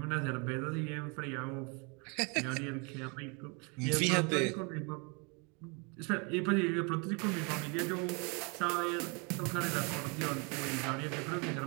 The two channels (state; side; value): quieter; left; 32.4 dB